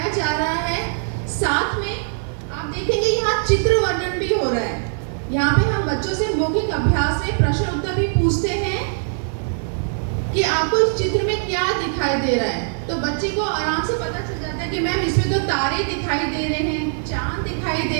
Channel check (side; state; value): left; silent; digital silence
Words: जा रहा है। साथ में आप देखेंगे यहाँ चित्र वर्णन भी हो रहा है। यहाँ पे हम बच्चों से मौखिक अभ्यास में प्रश्न उत्तर भी पूछते हैं कि आपको इस चित्र में क्या दिखाई दे रहा है। तो बच्चे को आराम से पता चल जाता है कि मैम इसमें तो तारे दिखाई दे रहे हैं, चांद दिखाई